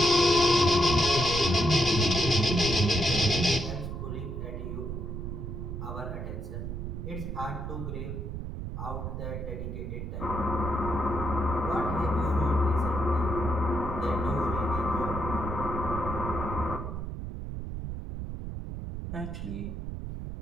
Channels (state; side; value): noise; right; rumble, 6 dB below the sound